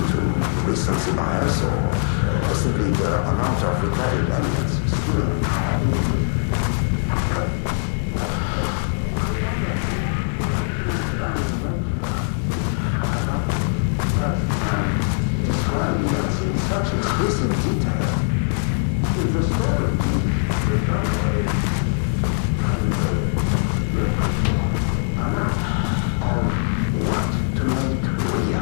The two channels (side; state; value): right; silent; digital silence